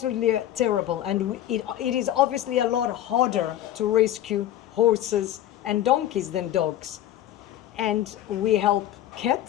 terrible. And it is obviously a lot harder to rescue horses and donkeys than dogs. And we help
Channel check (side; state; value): right; quieter; 12.4 dB